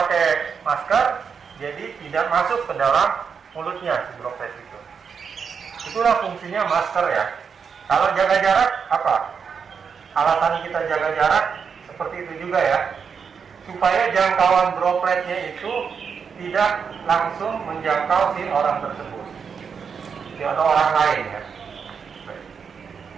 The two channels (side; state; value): left; quieter; 6.3 dB